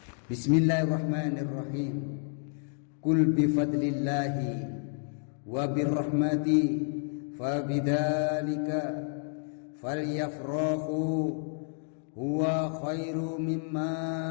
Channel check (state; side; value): silent; right; 58 dB below the other